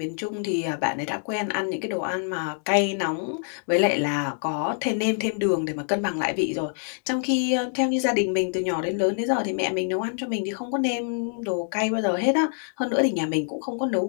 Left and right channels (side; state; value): right; silent; 61 dB below the other